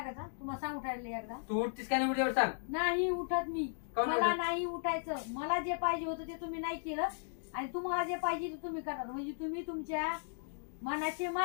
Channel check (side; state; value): right; silent; digital silence